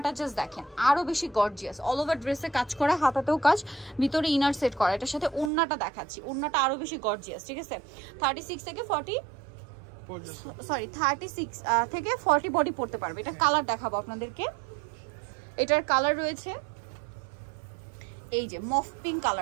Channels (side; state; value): left; drops out; at 5.5 s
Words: জাস্ট দেখেন, আরো বেশি গর্জিয়াস, অল ওভার ড্রেসে কাজ করা, হাতাতেও কাজ, ভিতরে ইনার সেট করা। এটার সাথে ওড়নাটা দেখাচ্ছি, ওড়নাটা আরো বেশি গর্জিয়াস, ঠিক আছে? 36 থেকে 40, সরি 36 থেকে 40 বডি পড়তে পারবে। এটা কালার দেখাবো আপনাদেরকে। এটার কালার রয়েছে এই যে মফ পিঙ্ক